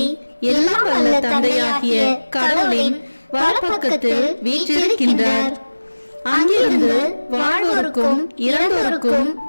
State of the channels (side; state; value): both; inverted; correlation -1.00